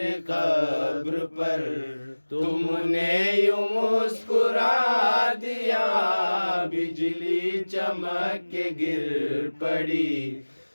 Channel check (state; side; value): inverted; both; correlation -1.00